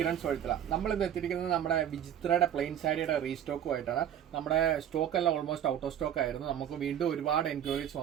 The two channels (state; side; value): quieter; left; 10.0 dB